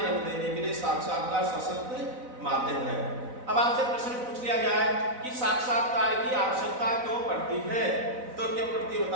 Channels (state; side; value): late; left; 4.0 ms